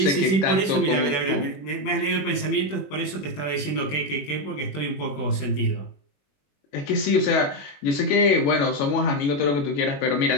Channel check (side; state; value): right; late; 21 ms